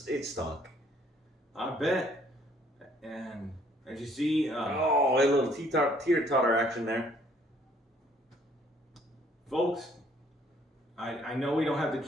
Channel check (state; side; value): normal; both; correlation 0.62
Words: I bet. And as you see, a little teeter-totter action there. Folks, I know we don't have to